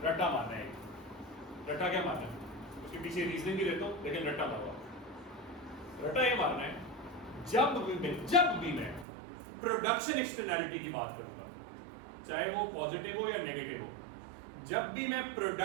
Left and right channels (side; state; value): left; drops out; at 9.1 s